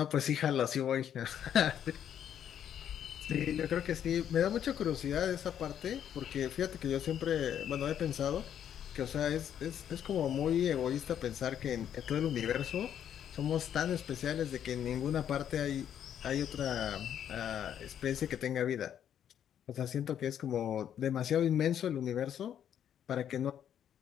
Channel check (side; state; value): right; quieter; 9.6 dB